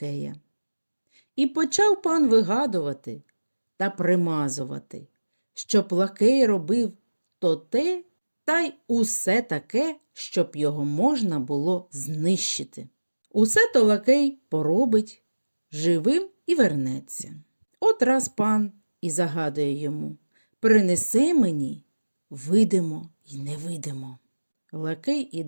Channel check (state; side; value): inverted; both; correlation -1.00